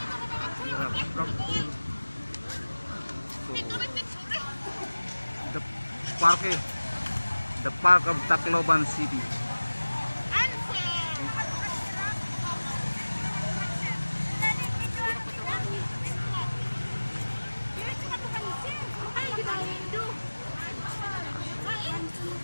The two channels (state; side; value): inverted; both; correlation -1.00